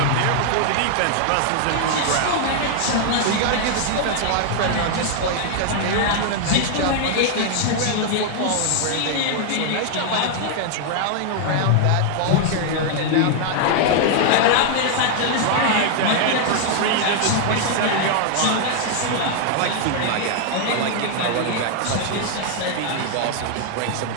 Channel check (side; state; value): both; different; correlation 0.00